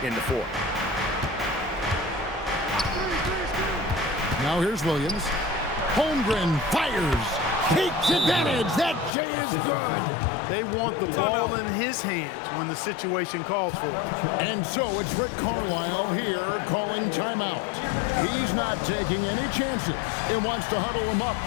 in the fourth. Now here's Williams. Holmgren fires. Takes advantage. That J is good. They want the ball in his hands when the situation calls for it. And so it's Rick Carlisle here calling timeout. He's not taking any chances and wants to huddle him up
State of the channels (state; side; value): drops out; right; at 9.1 s